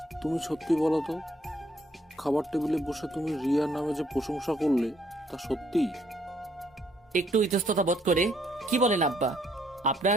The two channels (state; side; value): normal; both; correlation 0.68